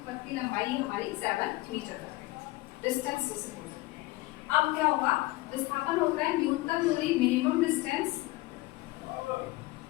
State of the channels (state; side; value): quieter; right; 20.3 dB